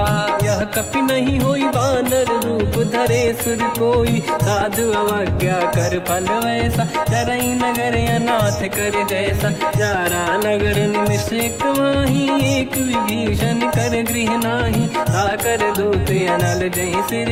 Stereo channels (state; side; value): identical; both; correlation 1.00